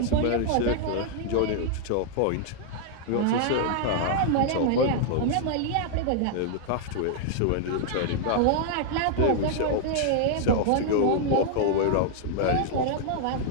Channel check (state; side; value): different; both; correlation 0.00